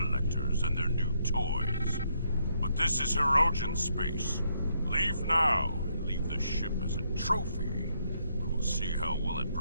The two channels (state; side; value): inverted; both; correlation -0.75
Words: and their new toys. But this is Hirogen space. Leave now, and leave the ship as a trophy. We will see how well it